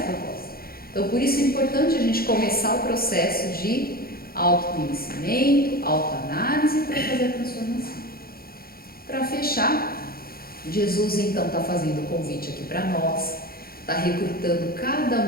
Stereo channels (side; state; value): right; late; 0.44 ms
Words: proposta. Então, por isso é importante a gente começar o processo de autoconhecimento, autoanálise para fazer a transformação. Para fechar, Jesus então está fazendo o convite aqui para nós, está recrutando cada